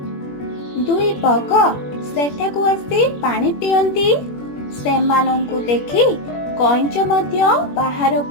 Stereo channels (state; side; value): late; right; 21 ms